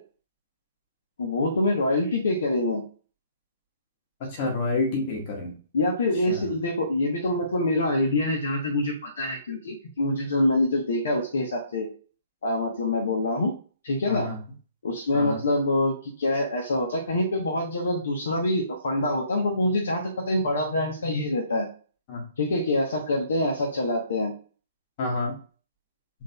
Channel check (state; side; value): inverted; both; correlation -0.64